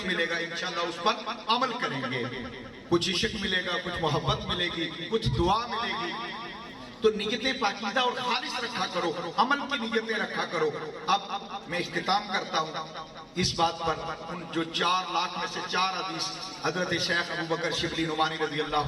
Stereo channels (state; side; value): identical; both; correlation 1.00